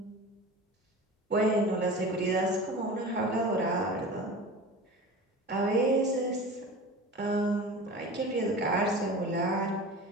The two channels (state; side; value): normal; both; correlation 0.34